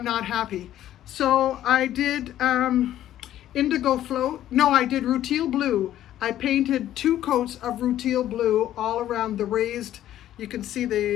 not happy. So I did indigo float. No, I did rutile blue. I painted 2 coats of rutile blue all around the raised, you can see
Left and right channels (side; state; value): right; quieter; 12.4 dB